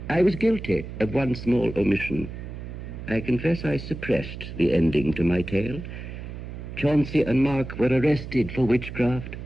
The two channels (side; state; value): right; noise; hum, 10 dB below the sound